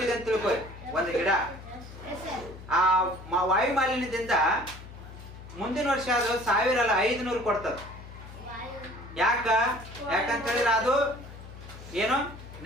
ಅಂತ ತಿಳ್ಕೊಳ್ಳಿ ಒಂದು ಗಿಡ. ಆ ವಾಯು ಮಾಲಿನ್ಯದಿಂದ ಮುಂದಿನ ವರ್ಷ ಅದು 1000 ಅಲ್ಲ 500 ಕೊಡ್ತದೆ. ಯಾಕಂತ ಹೇಳಿದ್ರೆ ಅದು ಏನು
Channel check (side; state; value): left; noise; hum, 15 dB below the sound